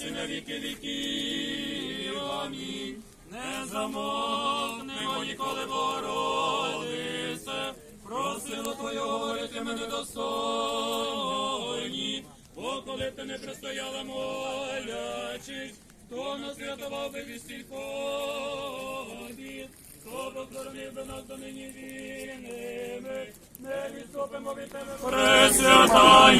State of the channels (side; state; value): both; identical; correlation 1.00